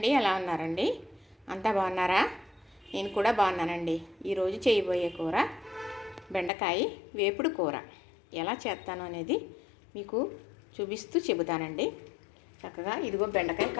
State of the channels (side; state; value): right; drops out; at 6.5 s